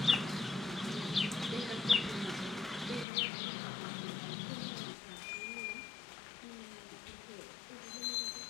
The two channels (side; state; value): right; drops out; at 3.1 s